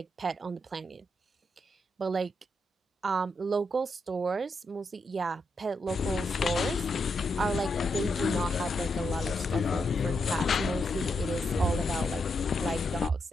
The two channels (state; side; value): normal; both; correlation 0.82